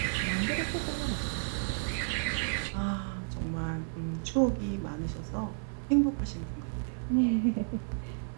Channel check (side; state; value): left; silent; 56 dB below the other